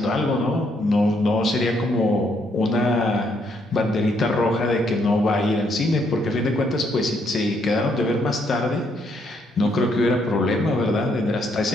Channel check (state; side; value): normal; both; correlation 0.73